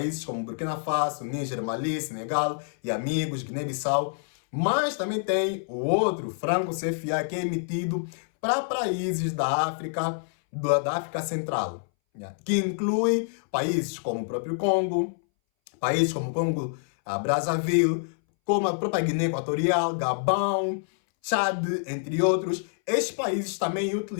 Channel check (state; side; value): silent; right; 60 dB below the other